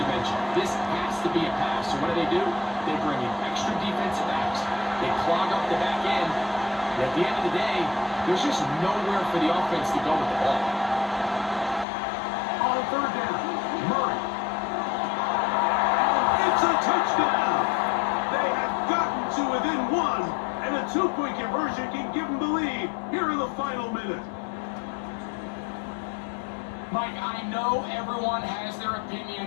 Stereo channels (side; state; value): right; drops out; at 11.9 s